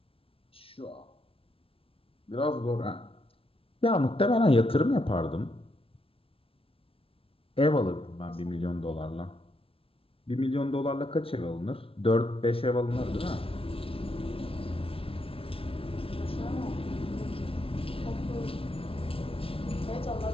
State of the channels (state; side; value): late; right; 0.26 ms